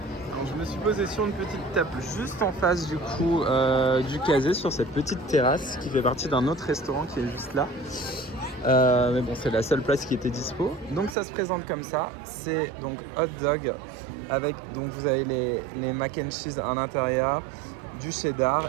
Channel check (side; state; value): left; drops out; at 11.2 s